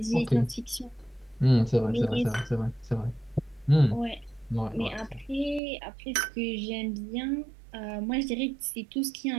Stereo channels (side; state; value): left; drops out; at 5.6 s